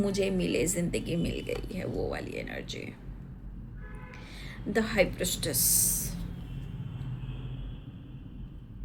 मिले, ज़िंदगी मिल गई है, वो वाली एनर्जी। द हाई प्रिस्टेस,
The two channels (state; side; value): identical; both; correlation 1.00